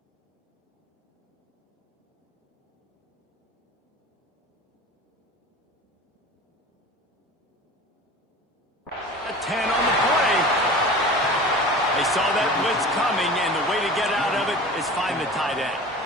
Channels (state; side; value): normal; both; correlation 0.37